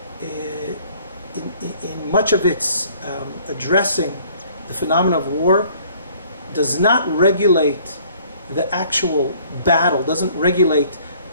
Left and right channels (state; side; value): inverted; both; correlation -0.57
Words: in much of its addressing the phenomena of war, does not regulate the actual battle, doesn't regulate